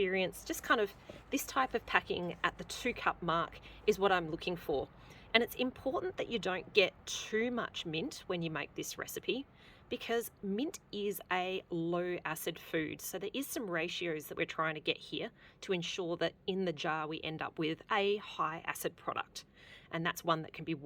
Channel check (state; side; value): identical; both; correlation 1.00